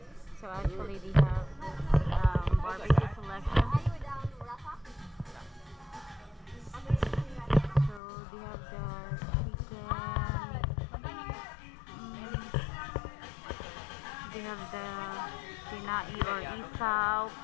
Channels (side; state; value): right; drops out; at 8.0 s